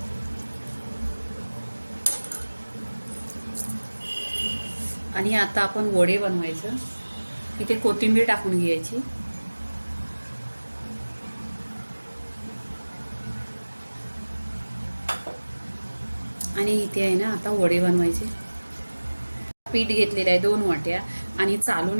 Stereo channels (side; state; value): both; inverted; correlation -1.00